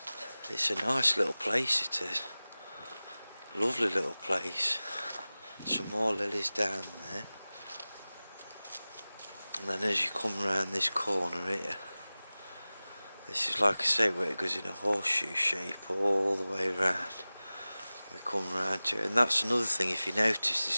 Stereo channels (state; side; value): inverted; both; correlation -0.98